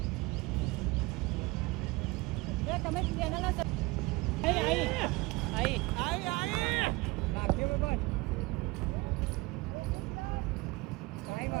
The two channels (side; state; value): left; quieter; 23.1 dB